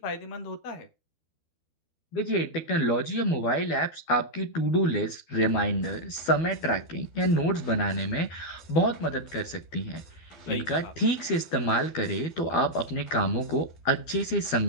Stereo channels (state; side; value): late; right; 12 ms